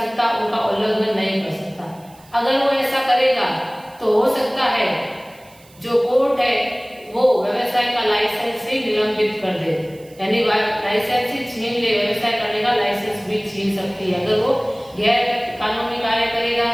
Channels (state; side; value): noise; right; hiss, 27 dB below the sound